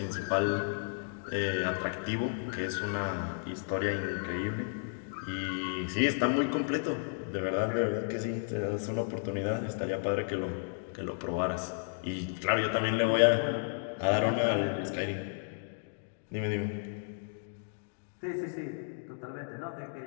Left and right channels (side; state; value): right; silent; digital silence